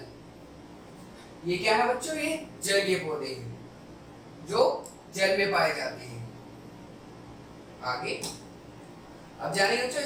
ये क्या है बच्चों, ये जलीय पौधे हैं जो जल में पाए जाते हैं। आगे अब जानेंगे बच्चों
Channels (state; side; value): identical; both; correlation 1.00